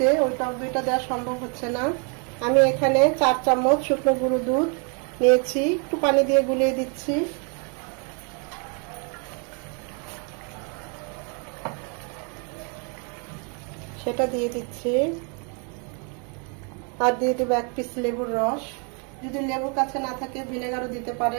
ওই টক দইটা দেওয়া সম্ভব হচ্ছে না। আমি এখানে 4 চামচ শুকনো গুঁড়ো দুধ নিয়েছি, একটু পানি দিয়ে গুলিয়ে দিচ্ছি। সেটা দিয়ে দিচ্ছি, আর দিয়ে দেবো 1 পিস লেবুর রস। যদি লেবুর কাছে না থাকে ভিনেগারও দিতে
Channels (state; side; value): quieter; left; 37.3 dB